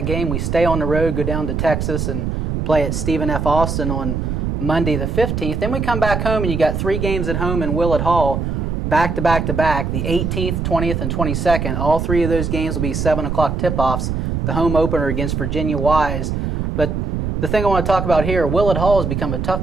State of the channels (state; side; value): noise; right; rumble, 1 dB below the sound